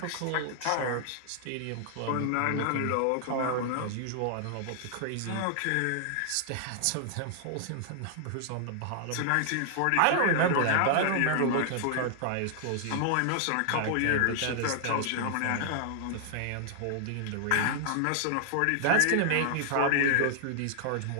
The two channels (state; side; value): different; both; correlation 0.00